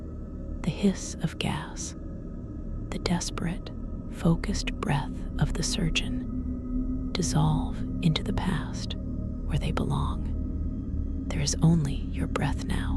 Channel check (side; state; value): both; identical; correlation 1.00